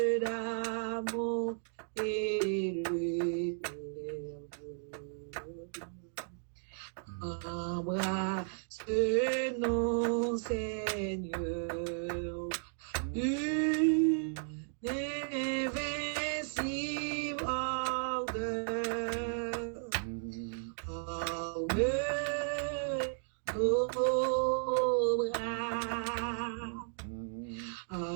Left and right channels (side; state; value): left; silent; digital silence